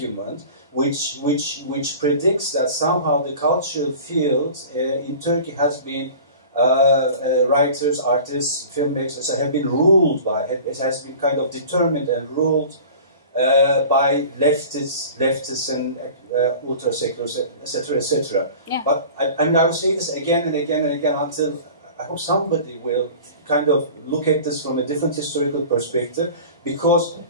which predicts that somehow the cultural field in Turkey has been writers, artists, filmmakers have been ruled by, it has been kind of determined and ruled by leftists and ultra-seculars, etc., etc. Yeah. But I will say this again and again and again until I hope somebody will kind of look at this from a different historical perspective, because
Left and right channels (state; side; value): inverted; both; correlation -0.41